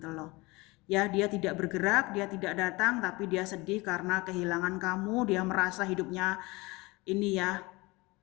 loh. Ya, dia tidak bergerak, dia tidak datang, tapi dia sedih karena kehilangan kamu. Dia merasa hidupnya ini ya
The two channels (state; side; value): quieter; right; 23.5 dB